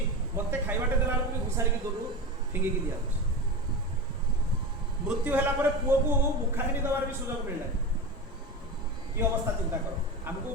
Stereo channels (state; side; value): normal; both; correlation 0.24